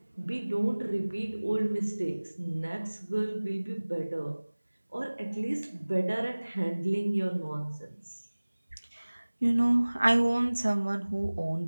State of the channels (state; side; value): inverted; both; correlation -1.00